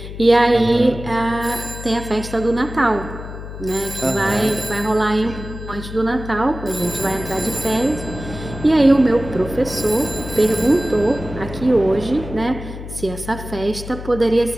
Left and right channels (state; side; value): noise; left; hum, 11 dB below the sound